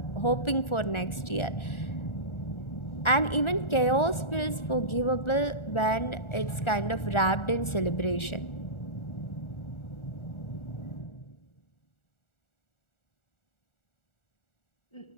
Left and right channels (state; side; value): late; right; 1.4 ms